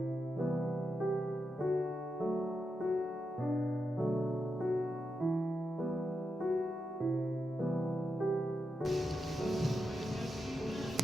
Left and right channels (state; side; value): normal; both; correlation 0.86